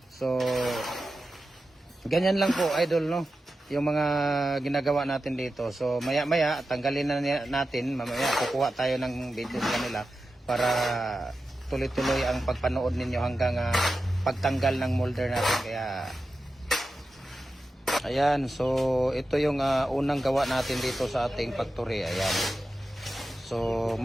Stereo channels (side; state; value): both; normal; correlation 0.92